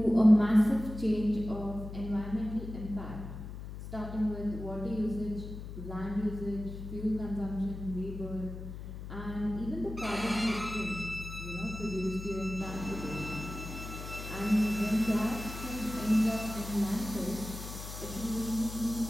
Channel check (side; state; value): left; noise; hum, 9 dB below the sound